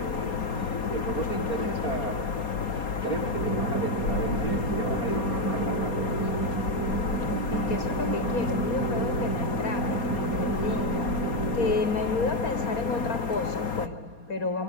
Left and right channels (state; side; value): late; right; 4.3 ms